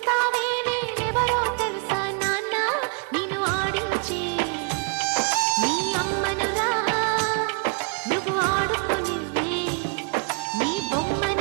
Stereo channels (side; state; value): left; quieter; 36.7 dB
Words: నేనెవరో తెలుసా నాన్న నేను ఆడించే నీ అమ్మనురా నువ్వు ఆడుకుని నీ